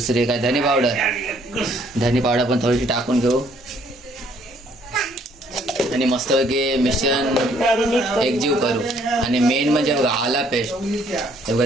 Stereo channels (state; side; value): normal; both; correlation 0.64